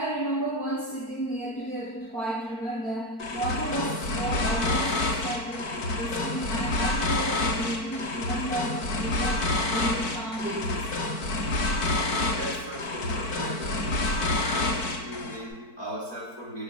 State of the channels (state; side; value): late; right; 4.5 ms